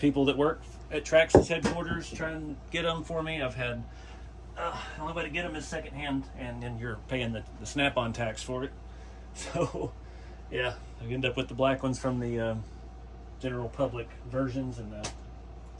people that work at Traxxas headquarters try and get them for me. I've had, the only way to get them is secondhand, and then you're paying the snap-on tax for it. So yeah, I end up with the black ones from the general public versions, and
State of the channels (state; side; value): identical; both; correlation 1.00